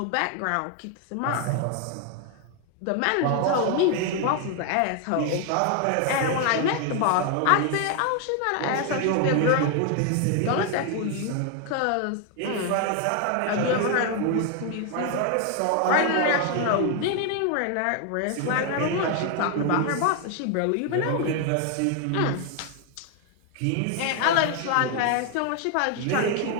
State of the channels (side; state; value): both; different; correlation 0.01